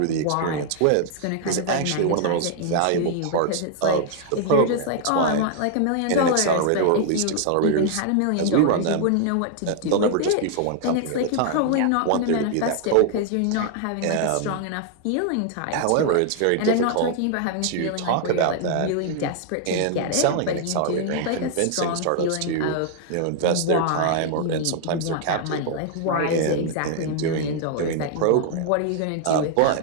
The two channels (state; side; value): different; both; correlation 0.00